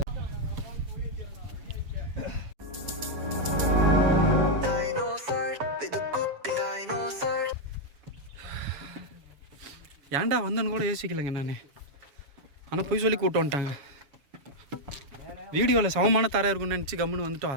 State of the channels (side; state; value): left; late; 7.2 ms